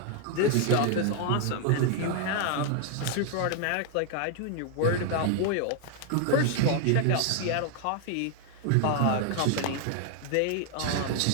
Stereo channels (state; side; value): different; both; correlation 0.00